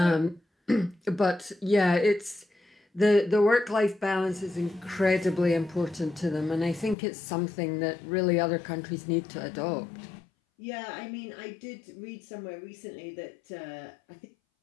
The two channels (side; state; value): right; drops out; at 7.0 s